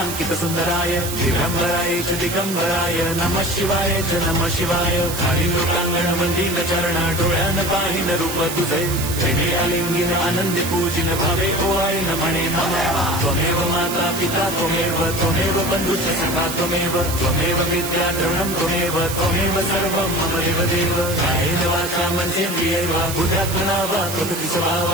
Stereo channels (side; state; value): right; noise; hiss, 7 dB below the sound